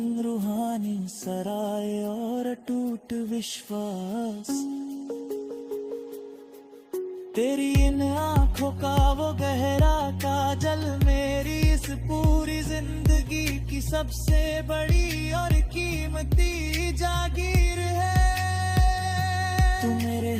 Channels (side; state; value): both; identical; correlation 1.00